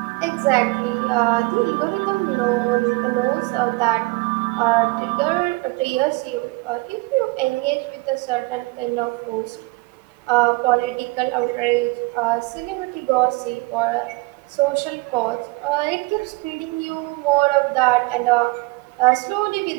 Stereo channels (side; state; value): left; quieter; 24.0 dB